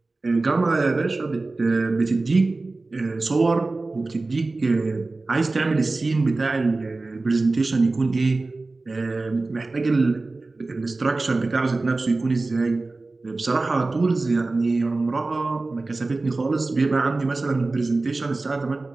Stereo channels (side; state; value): left; quieter; 3.4 dB